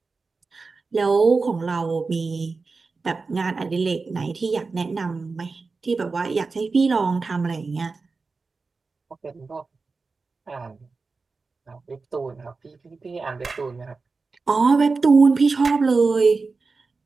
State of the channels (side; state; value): left; quieter; 4.2 dB